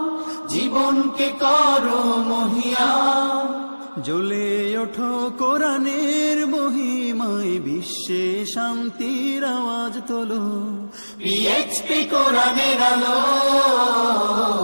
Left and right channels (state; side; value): inverted; both; correlation -1.00